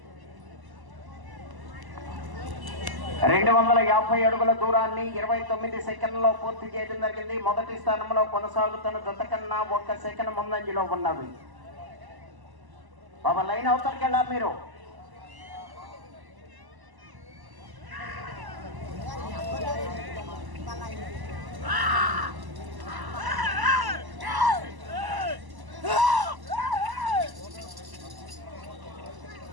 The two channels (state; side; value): late; left; 1.0 ms